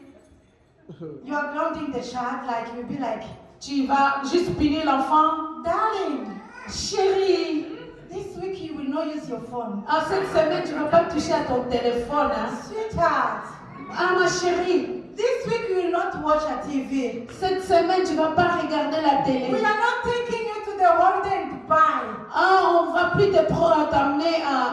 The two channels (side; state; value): both; identical; correlation 1.00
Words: you are grounding the child like you'll be like, tu vas juste punir l'enfant. darling, Chérie, this week you will not use your phone. cette semaine, tu ne vas pas toucher à ton téléphone. Hein? Sweetheart, Ma chérie, this week you will not watch a TV. cette semaine, tu ne vas pas regarder la We télé. are not taking you to the holiday in Dubai. On ne va plus t'amener